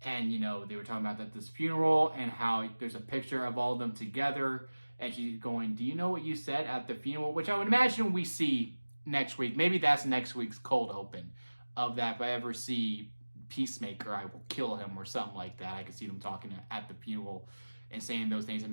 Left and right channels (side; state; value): both; inverted; correlation -1.00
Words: And, they were talking about that this funeral, and how there's a picture of all of them together, and she's going, do you know what you said at the funeral? Which I would imagine we see next week. Maybe that's next week's cold open of that. If I ever see Peacemaker, I will kill him, or something like that. I could see them talking at the funeral and saying those things